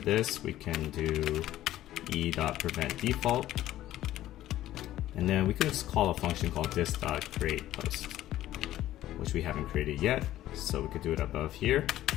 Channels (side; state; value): right; quieter; 13.9 dB